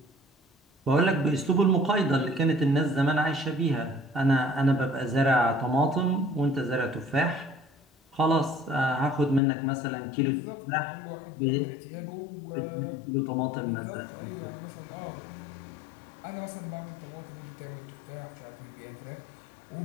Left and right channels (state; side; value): drops out; right; at 9.4 s